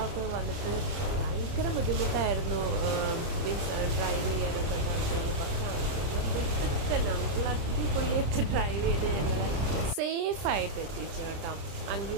വന്നിട്ട് ഭയങ്കര ബുദ്ധിമുട്ടായിരുന്നു ഡ്രൈവ് ചെയ്യാനൊക്കെ. പക്ഷെ നമ്മൾ അടിപൊളിയായിട്ട് ഡ്രൈവ് ചെയ്ത് ഞങ്ങൾ സേഫായിട്ട് എത്തിച്ചു കേട്ടോ.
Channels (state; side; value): late; left; 30 ms